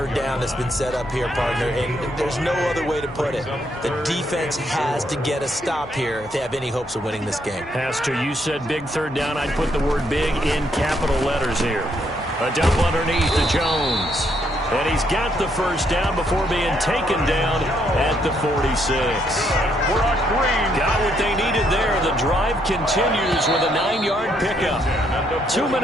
down that's been set up here, partner, and there's no other way to put it. The defense has to get a stop here if they have any hopes of winning this game. Pastor, you said big third down. I'd put the word big in capital letters here. A dump underneath to Jones. And he's got the first down before being taken down at the 46. Got what they needed there. The drive continues with a 9-yard pickup. 2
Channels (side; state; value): both; normal; correlation 0.73